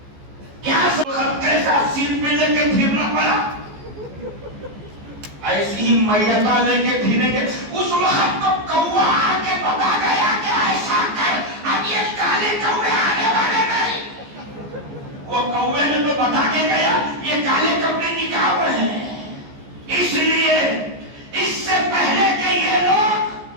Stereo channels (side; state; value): left; late; 14 ms